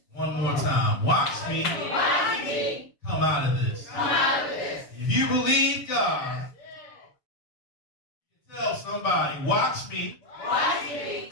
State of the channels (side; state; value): right; late; 7.2 ms